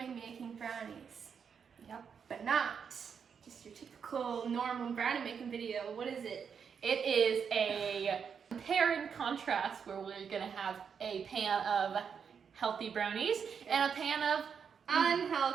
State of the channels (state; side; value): quieter; left; 6.8 dB